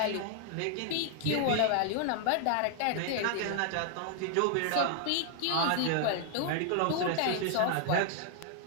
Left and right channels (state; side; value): different; both; correlation 0.00